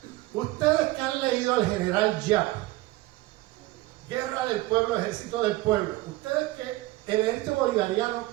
Ustedes que han leído al general Giap, Guerra del Pueblo, Ejército del Pueblo, ustedes que el ejército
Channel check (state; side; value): quieter; left; 18.7 dB